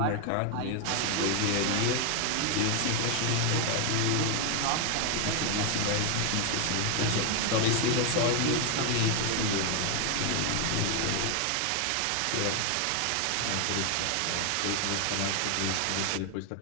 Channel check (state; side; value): different; both; correlation 0.01